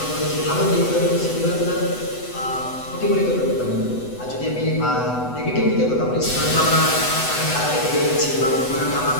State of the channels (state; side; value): late; right; 8.0 ms